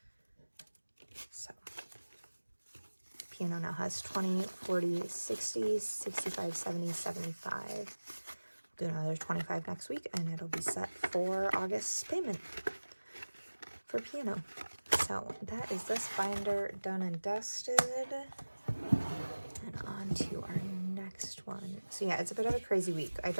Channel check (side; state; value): both; inverted; correlation -1.00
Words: So piano now has 20, 40, 60, 65, 70, 75. Do another 25 next week, and it'll be set for August's payment for piano. So that is this binder done and dusted. And on to our next one. So yeah, it's a bit of a crazy week. I